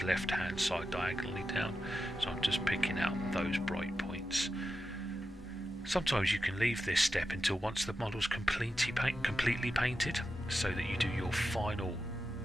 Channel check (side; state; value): both; normal; correlation 0.90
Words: left hand side diagonally down. So I'm just picking out those bright points. Sometimes you can leave this step until once the model's completely painted, so that you do your final